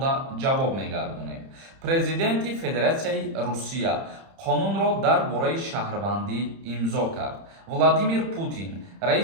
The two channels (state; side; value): late; left; 30 ms